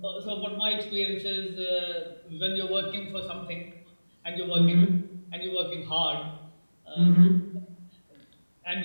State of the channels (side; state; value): both; inverted; correlation -1.00